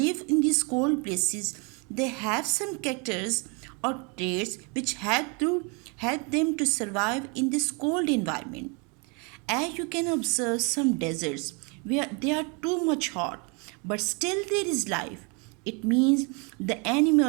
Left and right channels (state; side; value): quieter; left; 32.9 dB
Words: in these cold places, they have some characters or traits which help them to survive in this cold environment. As you can observe some deserts where they are too much hot, but still there is life. It means the